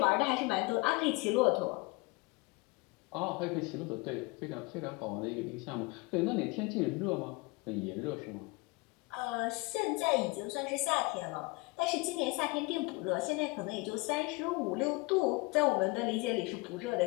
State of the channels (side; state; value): right; quieter; 25.3 dB